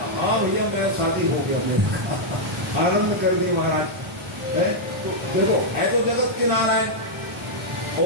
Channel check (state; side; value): normal; both; correlation -0.05